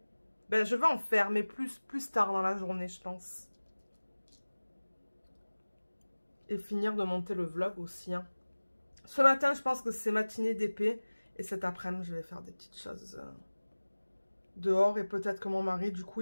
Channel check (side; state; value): both; inverted; correlation -1.00